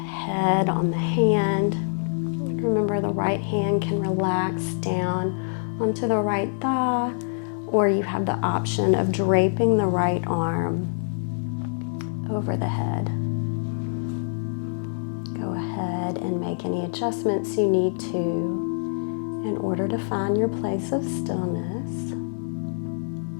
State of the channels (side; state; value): right; silent; digital silence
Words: on the hand. Remember, the right hand can relax down onto the right thigh, or you have the option of draping the right arm over the head. Go ahead and make any adjustments you need to in order to find your place of stillness.